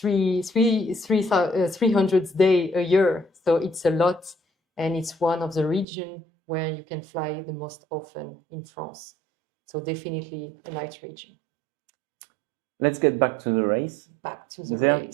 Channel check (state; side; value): drops out; left; at 5.9 s